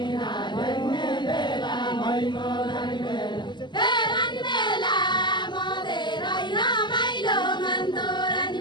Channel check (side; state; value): right; late; 0.21 ms